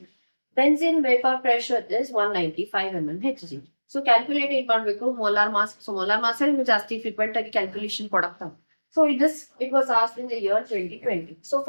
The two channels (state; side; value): inverted; both; correlation -1.00